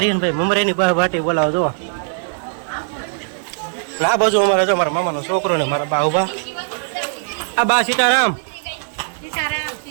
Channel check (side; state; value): left; silent; 63 dB below the other